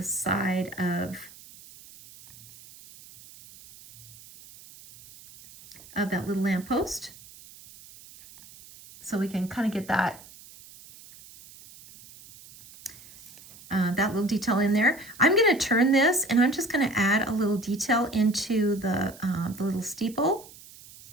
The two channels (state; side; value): noise; right; hiss, 20 dB below the sound